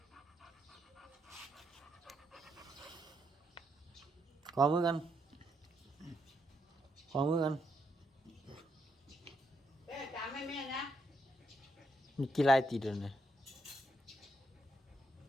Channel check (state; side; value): normal; both; correlation 0.78